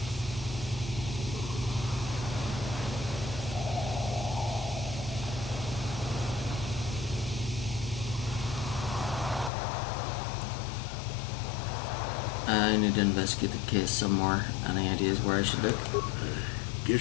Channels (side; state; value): right; drops out; at 9.5 s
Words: I need to investigate the case some more. Any ideas where I should look?